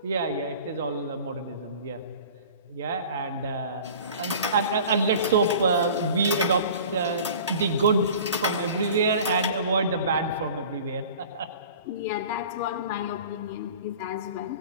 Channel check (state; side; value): inverted; both; correlation -0.43